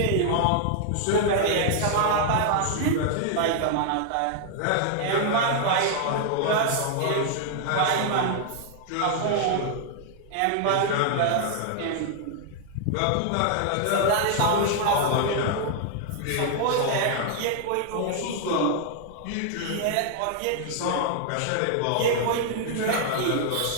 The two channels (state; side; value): different; both; correlation 0.00